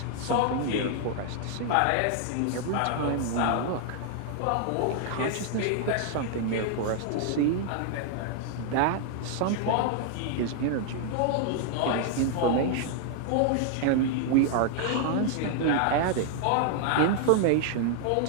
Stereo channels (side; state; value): both; different; correlation 0.00